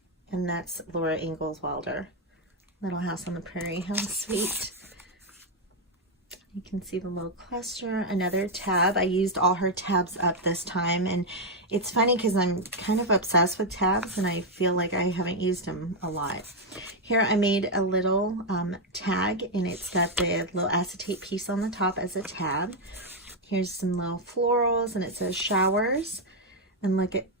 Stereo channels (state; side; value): normal; both; correlation 0.01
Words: And that's Laura Ingalls Wilder. Little House on the Prairie. How sweet. You can see the little cluster. Another tab. I used all her tabs up this time. And it's funny because I'm kind of obsessed with tabs, and I feel like I haven't used them a lot. Here I made a little tag, and it's got the little acetate piece on the top as a tab. Here's some little florals, and it says showers. And look at